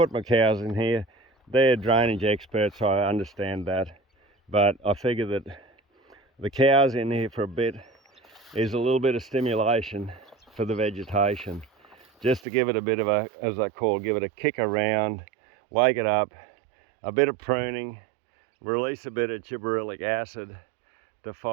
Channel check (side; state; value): left; drops out; at 12.4 s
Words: my cows in here. They're drainage experts, so I understand that, but I figure that the cows in here for a bit is a little bit of stimulation for the vegetation, just to give it a bit of a, as I call, give it a kick around, wake it up, a bit of pruning, release a bit of gibberellic acid to